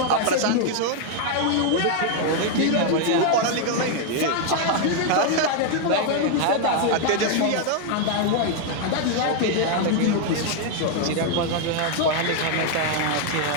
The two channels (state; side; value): different; both; correlation 0.00